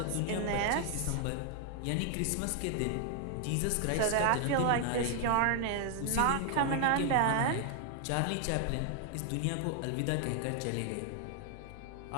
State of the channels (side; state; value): both; different; correlation 0.00